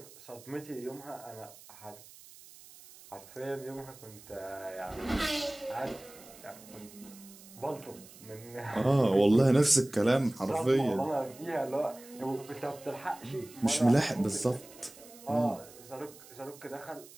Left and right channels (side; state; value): right; noise; hiss, 20 dB below the sound